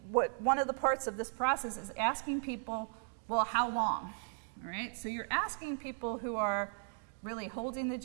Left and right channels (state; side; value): silent; left; 54 dB below the other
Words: one of the parts of this process is asking people, well, how long? All right? So you're asking people who are really holding the